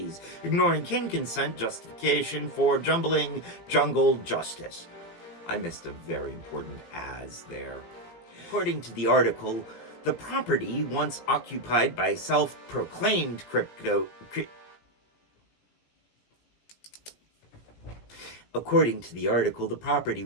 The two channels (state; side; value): late; right; 18 ms